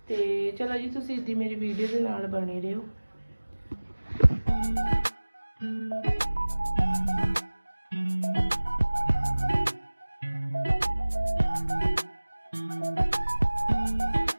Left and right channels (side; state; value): both; inverted; correlation -1.00